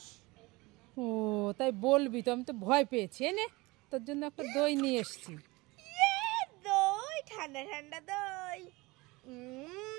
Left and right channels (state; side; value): quieter; left; 22.9 dB